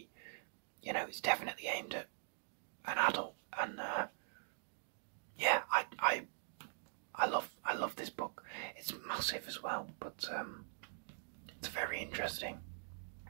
You know, it's definitely aimed at an adult, and yeah, I love this book. It's massive as well, but it's very interesting.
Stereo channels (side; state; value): left; silent; digital silence